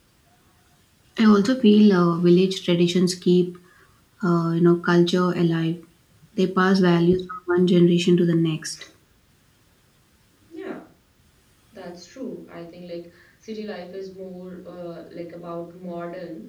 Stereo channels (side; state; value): both; identical; correlation 1.00